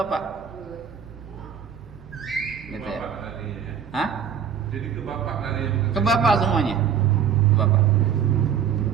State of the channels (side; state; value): left; quieter; 7.8 dB